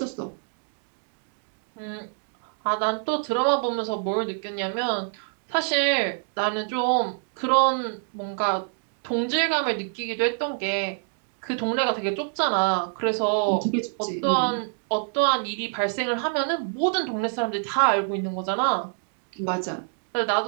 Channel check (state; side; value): silent; left; digital silence